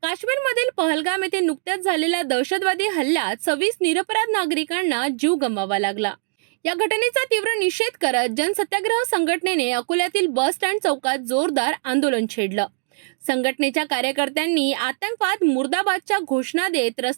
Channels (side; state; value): left; silent; digital silence